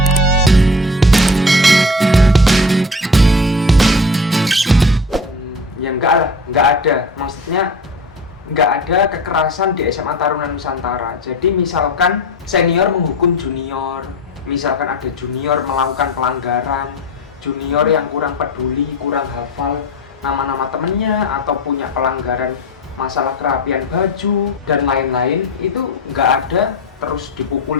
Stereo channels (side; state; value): both; normal; correlation 0.33